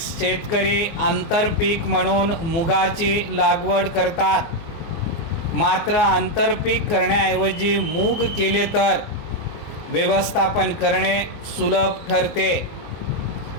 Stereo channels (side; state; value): right; late; 24 ms